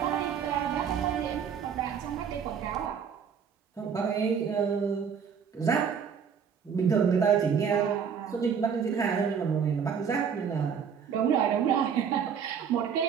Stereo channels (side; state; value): left; quieter; 7.1 dB